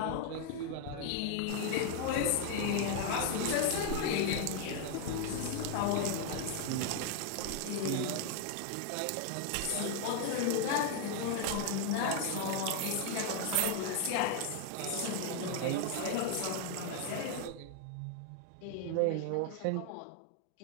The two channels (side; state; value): both; different; correlation 0.00